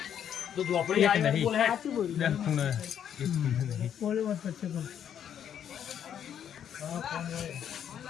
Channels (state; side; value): quieter; right; 9.2 dB